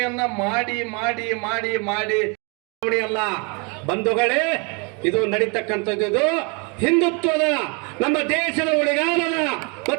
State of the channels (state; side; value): quieter; left; 33.2 dB